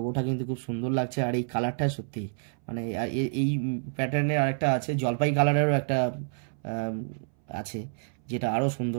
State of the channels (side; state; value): left; silent; 59 dB below the other